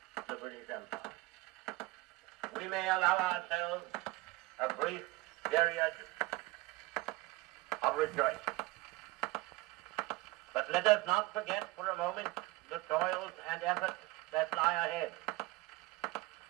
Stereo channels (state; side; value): quieter; left; 20.6 dB